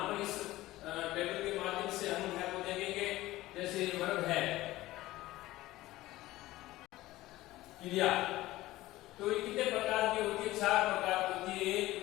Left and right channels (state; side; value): quieter; right; 17.1 dB